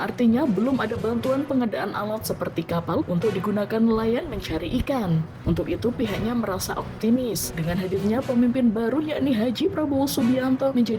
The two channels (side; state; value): both; identical; correlation 1.00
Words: belum ada bantuan pengadaan alat seperti kapal untuk digunakan nelayan mencari ikan. Untuk itu pihaknya merasa optimis dengan hadirnya pemimpin baru yakni Haji Prabowo Subianto